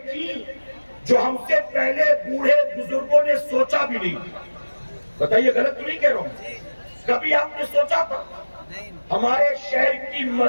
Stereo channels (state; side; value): inverted; both; correlation -1.00